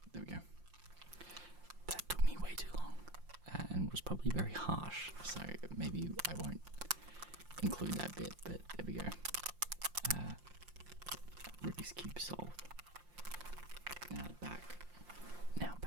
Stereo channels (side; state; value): left; late; 5.7 ms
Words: There we go. There we go. That took me way too long and was probably very harsh, so maybe I won't include that bit, but there we go. Rubik's Cube solved. Now back